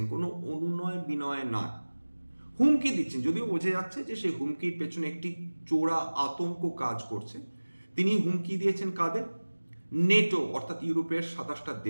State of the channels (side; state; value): both; inverted; correlation -1.00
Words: কোনো অনুনয় বিনয় না, হুমকি দিচ্ছেন। যদিও বোঝা যাচ্ছে যে সেই হুমকির পেছনে একটি চোরা আতঙ্ক কাজ করছে। তিনি হুমকি দিয়েছেন কাদের? নেটো অর্থাৎ ইউরোপের 27টা